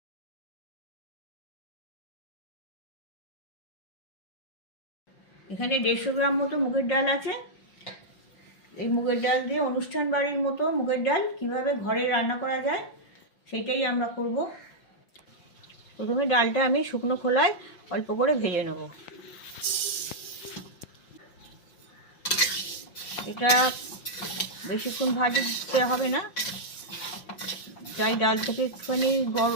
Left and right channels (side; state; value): right; late; 5.7 ms